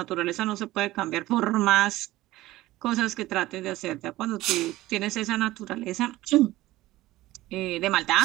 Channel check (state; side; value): quieter; left; 17.2 dB